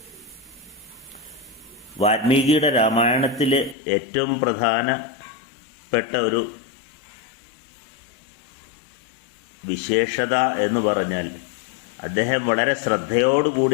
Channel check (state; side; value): drops out; right; at 3.8 s